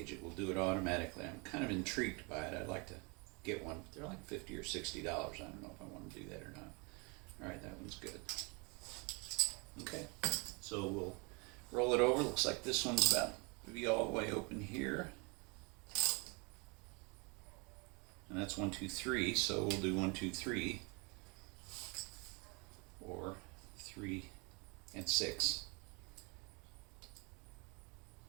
It will do it automatically. I'm kind of intrigued by it. I'd like to get one. They're like $50 or $60. I don't know if I want to do that or not. All right, that one's good. Okay, so we'll roll it over. Looks like this one's about to be all the way open here. And that's 1, 2, 3, so we'll do 1, 2, 3, or 3 and 6.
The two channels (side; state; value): left; quieter; 31.2 dB